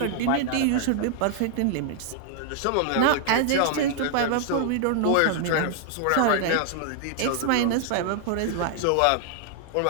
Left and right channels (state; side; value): different; both; correlation 0.00